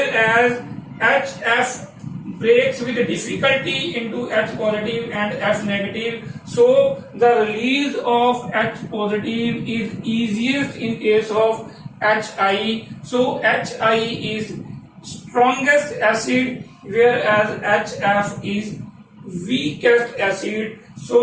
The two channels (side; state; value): both; identical; correlation 1.00